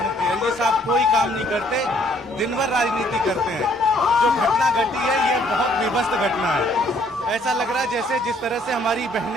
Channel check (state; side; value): normal; both; correlation 0.64